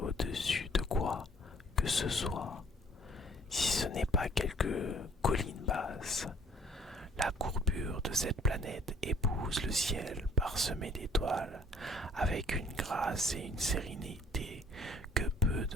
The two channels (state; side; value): normal; both; correlation 0.58